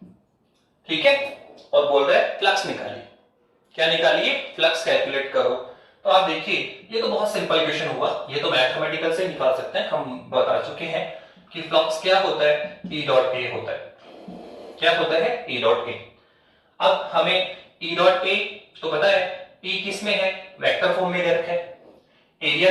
ठीक है, और बोल रहा है फ्लक्स निकालिए। क्या निकालिए? फ्लक्स कैलकुलेट करो। तो आप देखिए ये तो बहुत सिंपल क्वेश्चन हुआ, ये तो मैथमेटिकल से निकाल सकते हैं, हम बता चुके हैं कि फ्लक्स क्या होता है, ई डॉट ए होता है। क्या होता है? E dot A. अब हमें ई डॉट ए तो पता है, ई किस में है, वेक्टर फॉर्म में दे रखा है, एरिया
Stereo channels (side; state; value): both; identical; correlation 1.00